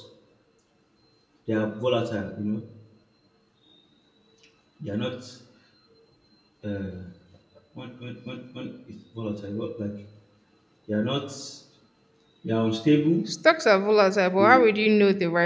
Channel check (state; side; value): identical; both; correlation 1.00